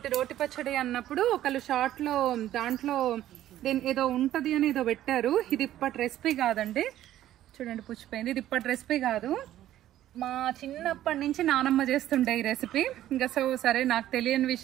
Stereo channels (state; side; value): quieter; left; 12.9 dB